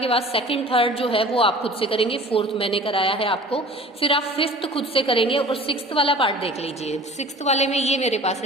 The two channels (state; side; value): normal; both; correlation 0.44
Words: बाद सेकंड थर्ड जो है वो आप खुद से करेंगे, 4th मैंने कराया है आपको, फिर आप 5th खुद से करेंगे, और 6th वाला पार्ट देख लीजिए। 6th वाले में ये मेरे पास